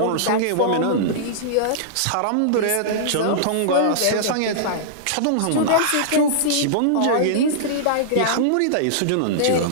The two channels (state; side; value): different; both; correlation -0.02